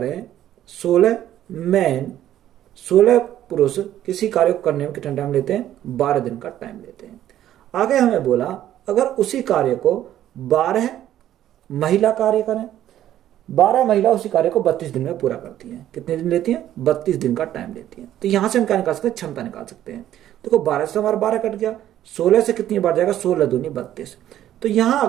16 मैन 16 पुरुष किसी कार्य को करने में कितना टाइम लेते हैं? 12 दिन का टाइम लेते हैं। आगे हमें बोला अगर उसी कार्य को 12 महिला कार्य करें, 12 महिला उसी कार्य को 32 दिन में पूरा करती हैं। कितने दिन लेती हैं? 32 दिन का टाइम लेती हैं। तो यहां से हम क्या निकाल सकते हैं? क्षमता निकाल सकते हैं। देखो 12 से हमारा 12 कट गया, 16 से कितनी बार जाएगा? 16 दूनी 32। तो यहां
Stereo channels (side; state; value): left; quieter; 12.1 dB